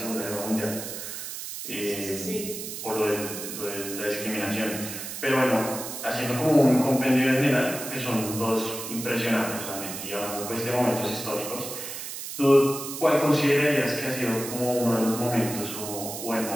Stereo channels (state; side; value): noise; right; hiss, 8 dB below the sound